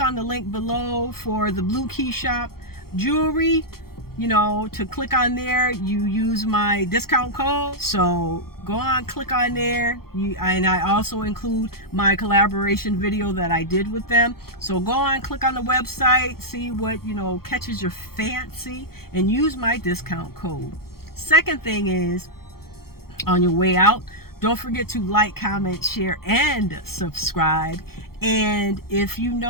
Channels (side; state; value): right; late; 0.94 ms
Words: on the link below for the Blue Key Shop jewelry you know, to click on there, you use my discount code. So go on, click on there. And I also include my collaboration video that I did with them. So go on, click on the website, see what, you know, catches your fancy, and use my discount code. Second thing is, on your way out, don't forget to like, comment, share, and subscribe. And if you